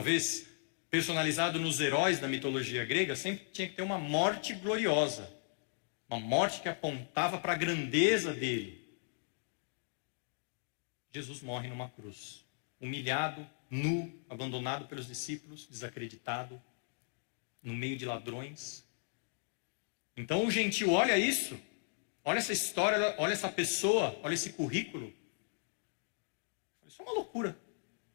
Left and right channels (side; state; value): right; silent; digital silence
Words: personalizado nos heróis da mitologia grega, sempre tinha que ter uma morte gloriosa. Uma morte que apontava para a grandeza dele. Jesus morre numa cruz, humilhado, nu, abandonado pelos discípulos, desacreditado, no meio de ladrões. Então o gentio olha isso, olha essa história, olha essa pessoa, olha esse currículo. Isso é uma loucura.